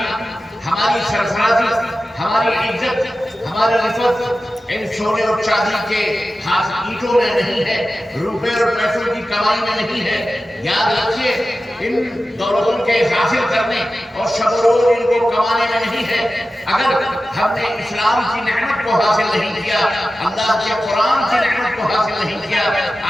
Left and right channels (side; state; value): both; normal; correlation 0.94